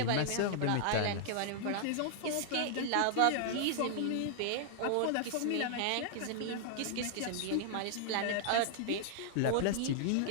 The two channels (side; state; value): both; different; correlation -0.01